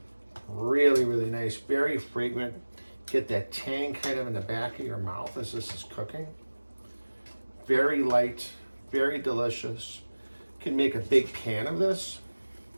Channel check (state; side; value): inverted; both; correlation -1.00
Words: Really, really nice, very fragrant. Get that tang kind of in the back of your mouth as this is cooking. Very light, very delicious. Can make a big pan of this.